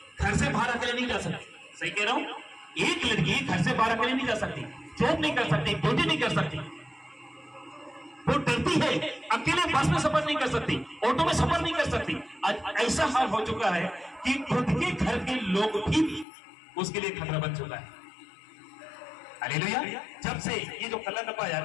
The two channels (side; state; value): right; drops out; at 16.2 s